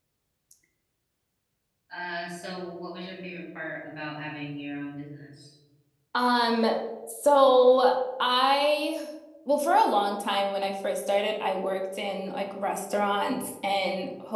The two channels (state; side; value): identical; both; correlation 1.00